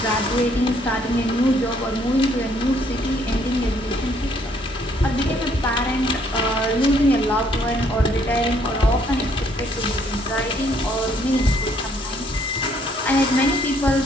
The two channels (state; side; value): normal; both; correlation 0.66